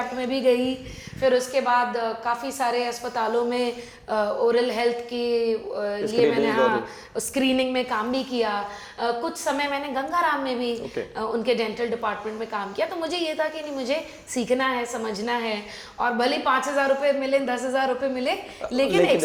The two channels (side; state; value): both; identical; correlation 1.00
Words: में भी गई, फिर उसके बाद काफ़ी सारे अस्पतालों में ओरल हेल्थ के लिए मैंने स्क्रीनिंग में काम भी किया। कुछ समय मैंने गंगाराम में भी उनके डेंटल डिपार्टमेंट में काम किया। तो मुझे ये था कि नहीं, मुझे सीखना है, समझना है, और भले 5,000 रुपये मिले, 10,000 रुपये मिले, लेकिन